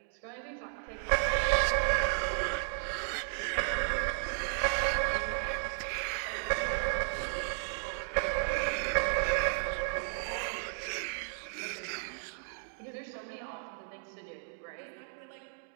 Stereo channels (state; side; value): silent; left; digital silence